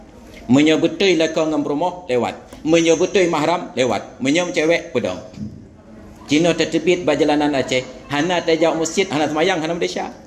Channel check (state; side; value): identical; both; correlation 1.00